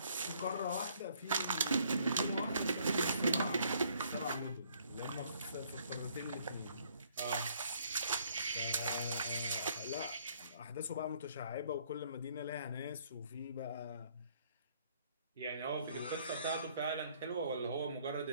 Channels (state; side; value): inverted; both; correlation -0.64